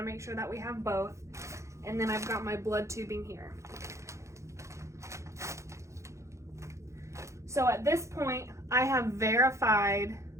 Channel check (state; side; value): late; left; 0.14 ms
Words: make sure that we have both, and then I've got my blood tubing here. So at this point, I have verified